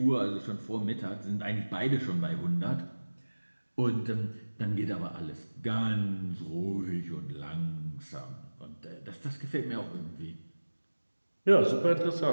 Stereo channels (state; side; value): inverted; both; correlation -1.00